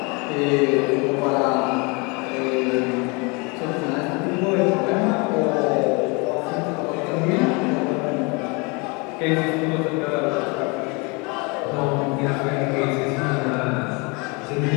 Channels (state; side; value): quieter; right; 29.5 dB